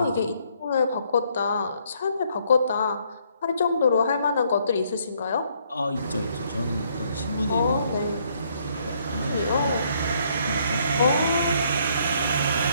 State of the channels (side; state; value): both; inverted; correlation -0.68